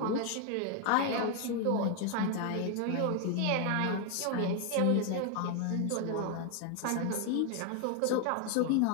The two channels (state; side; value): different; both; correlation 0.01